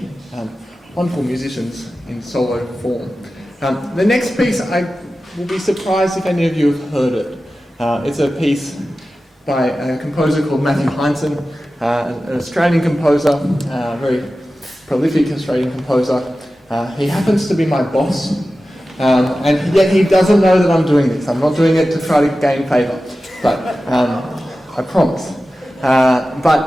wonderful musicians in solo form. The next piece, I will be surprised if any of you have heard it. It's a piece by a composer called Matthew Hindson, an Australian composer, very prolific Australian composer. He happens to be my boss, and yet he doesn't know that I'm doing this. I'm not doing it to try to gain favour, but I promise.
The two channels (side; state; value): both; normal; correlation 0.94